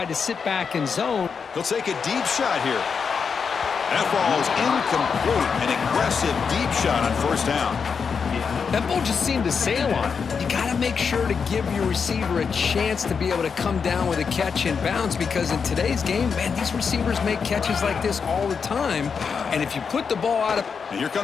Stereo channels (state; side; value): quieter; right; 6.0 dB